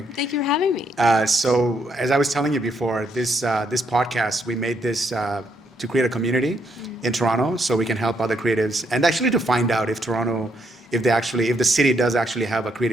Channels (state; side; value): normal; both; correlation 0.74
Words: Thank you for having me. So as I was telling you before, this podcast, we made this to create a community in Toronto so we can help other creatives and actually to find out if Toronto, if the city does actually have a